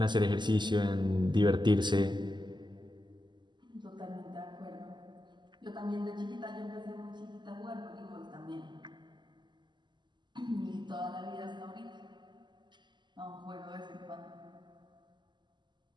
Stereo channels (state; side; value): late; left; 0.22 ms